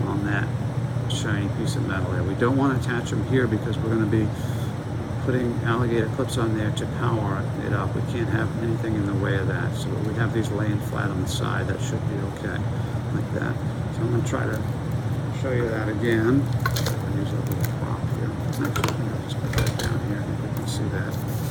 on that shiny piece of metal there. We don't want to attach them here because we're going to be putting alligator clips on there to power it up. We can't have anything in the way of that. So we have these laying flat on the side. That should be okay, like that. So I'm going to try to show you that again. I'll use a little prop here. Actually, I think I'll just put that down here. I think we can see that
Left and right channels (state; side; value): identical; both; correlation 1.00